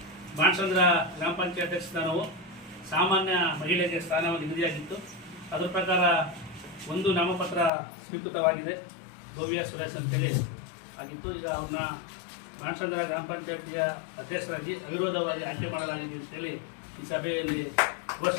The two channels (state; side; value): drops out; right; at 7.7 s